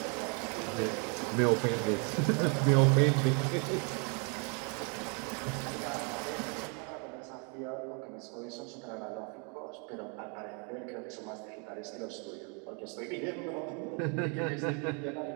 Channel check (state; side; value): quieter; left; 36.1 dB